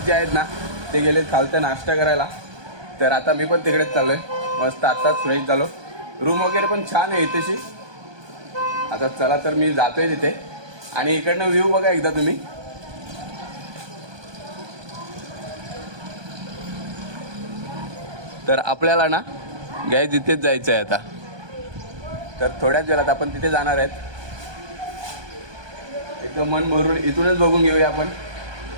जे आहेत ना ते गेले खालतं नाश्ता करायला. तर आता मी पण तिकडेच चाललोय. मस्त आत्ताच फ्रेश झालो. रूम वगैरे पण छान आहे इथेशी. आता चला तर मी जातोय तिथे. आणि इकडनं व्ह्यू बघा एकदा तुम्ही. तर आपल्याला ना गाय तिथेच जायचं आहे आता. तर थोड्याच वेळात आपण तिथे जाणार आहेत. एकदम मन भरून इथूनच बघून घेऊया आपण.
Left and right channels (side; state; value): left; late; 1.2 ms